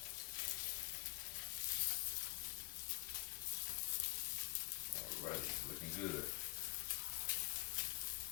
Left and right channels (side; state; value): right; quieter; 22.3 dB